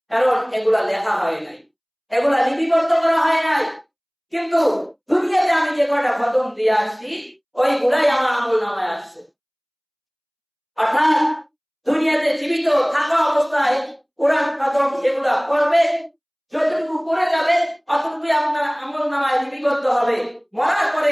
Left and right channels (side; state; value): both; identical; correlation 1.00